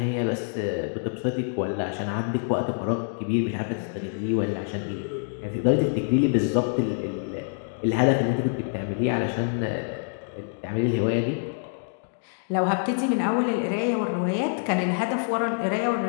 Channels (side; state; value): right; silent; digital silence